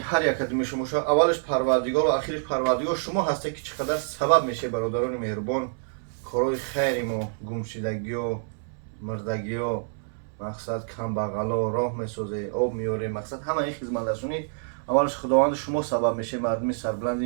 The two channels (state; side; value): silent; left; 60 dB below the other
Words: як адами шумоша. Аввалаш парвардигару ахираш парвардигор шумо ҳастед ки чӣ қадар сабаб мешавед бародарони меҳрубон корои хайри мо, гумшидагиё, мирдагиё, мақсад камбағало роҳ месозед, об меоред, мақсад ҳама ин хизматрасонӣ аввалаш худованди шумо сабаб мешавед, мардуми